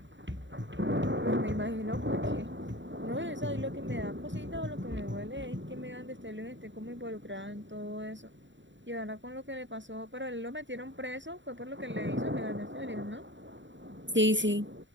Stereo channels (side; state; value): left; late; 0.54 ms